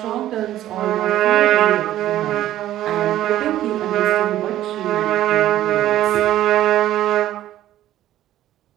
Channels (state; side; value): quieter; left; 13.3 dB